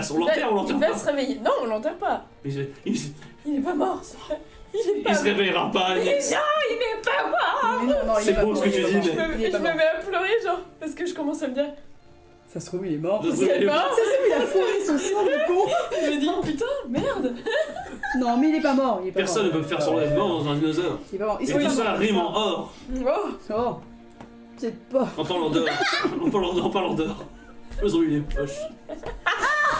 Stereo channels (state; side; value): identical; both; correlation 1.00